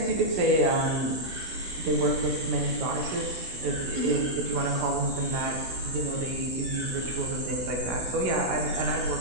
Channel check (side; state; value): left; late; 16 ms